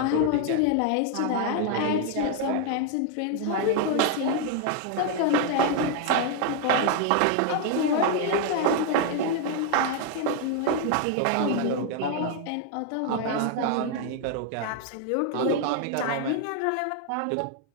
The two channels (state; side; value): different; both; correlation 0.01